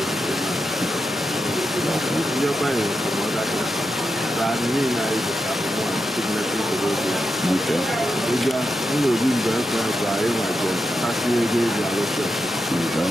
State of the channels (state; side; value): normal; both; correlation 0.87